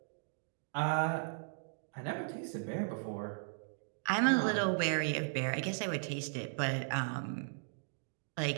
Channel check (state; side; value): silent; left; digital silence